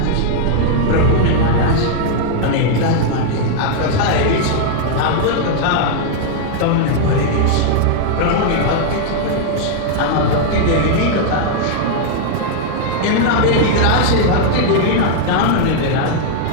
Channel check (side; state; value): both; different; correlation -0.01